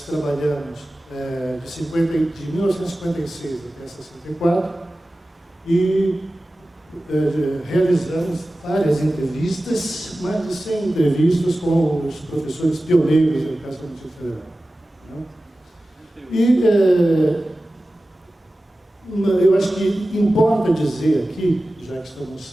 trabalhamos de 1956 até 64 e realizamos várias entrevistas, mais de 100 entrevistas com os professores pioneiros da educação do Distrito Federal. E eu acho que importa dizer aqui, já que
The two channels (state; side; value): normal; both; correlation 0.95